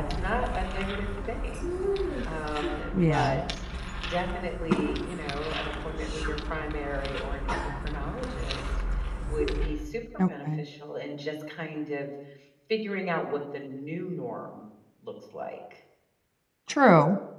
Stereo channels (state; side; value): identical; both; correlation 1.00